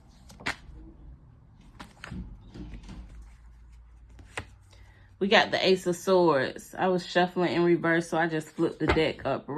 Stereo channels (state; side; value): identical; both; correlation 1.00